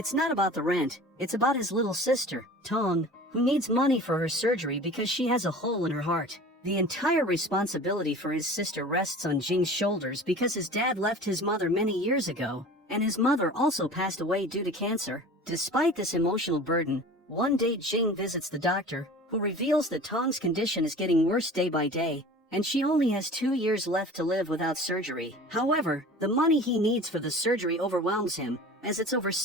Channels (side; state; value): both; normal; correlation 0.40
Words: not about the rent, it's about his little sister, Tong, who needs money for her surgery because she has a hole in her heart. The entire responsibility for his sister rests on Jing's shoulders because his dad left his mother many years ago, and his mother also passed away due to cancer. Despite this emotional burden, one day Jing visits the doctor, who reveals that Tong's condition is getting worse day by day, and she only has 2 years left to live without surgery. However, the money he needs for the surgery overwhelms him, as it's over